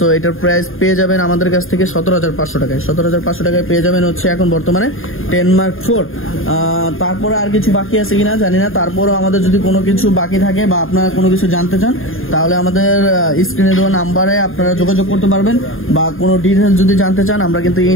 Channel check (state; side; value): late; right; 0.60 ms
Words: এটার প্রাইস পেয়ে যাবেন আমাদের কাছ থেকে 17,500 টাকায়। 17,500 টাকায় পেয়ে যাবেন হচ্ছে এখন বর্তমানে 10 Mark IV। তারপরে আর কিছু বাকি আছে কিনা জানি না, তারপরও আমাদের যদি কোনো কিছু বাকি থাকে বা আপনারা কোনো কিছু জানতে চান তাহলে আমাদের স্ক্রিনে দেওয়া নাম্বারে আপনারা যোগাযোগ করতে পারবেন, বা কোনো ডিটেলস যদি জানতে চান আমরা কিন্তু